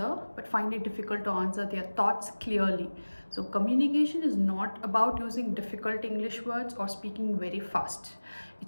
but find it difficult to answer their thoughts clearly. So communication is not about using difficult English words or speaking very fast.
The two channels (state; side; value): inverted; both; correlation -1.00